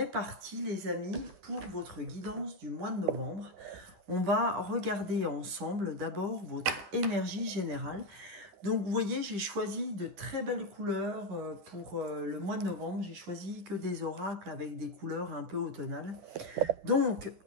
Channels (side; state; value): left; late; 11 ms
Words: parti les amis pour votre guidance du mois de novembre. On va regarder ensemble d'abord votre énergie générale. Donc, vous voyez, j'ai choisi de très belles couleurs pour le mois de novembre. J'ai choisi que des oracles avec des couleurs un peu automnales. Donc,